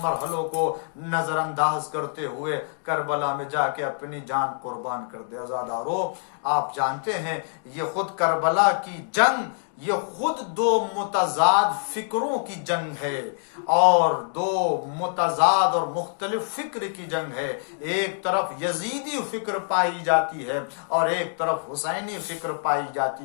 مرحلوں کو نظر انداز کرتے ہوئے کربلا میں جا کے اپنی جان قربان کر دے؟ عزادارو، آپ جانتے ہیں یہ خود کربلا کی جنگ یہ خود دو متضاد فکروں کی جنگ ہے اور دو متضاد اور مختلف فکر کی جنگ ہے. ایک طرف یزیدی فکر پائی جاتی ہے اور ایک طرف حسینی فکر پائی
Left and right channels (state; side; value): silent; right; digital silence